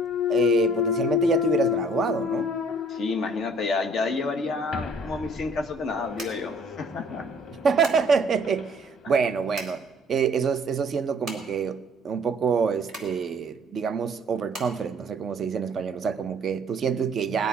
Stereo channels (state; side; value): normal; both; correlation 0.57